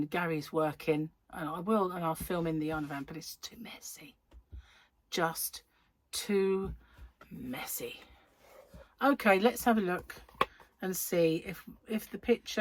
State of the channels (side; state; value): both; identical; correlation 1.00